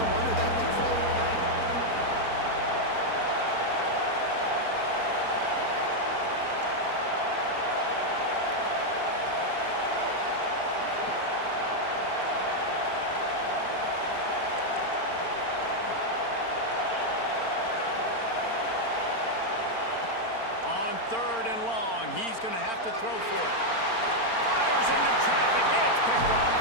wonder that thing fell. Third and long, he's going to have to throw for it. Fires into traffic, it's picked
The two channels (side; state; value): right; late; 4.4 ms